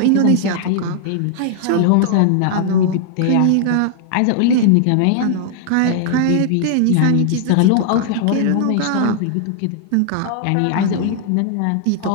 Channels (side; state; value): both; different; correlation -0.01